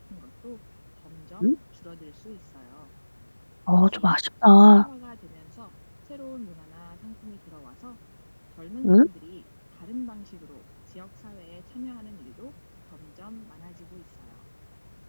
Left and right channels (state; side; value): inverted; both; correlation -1.00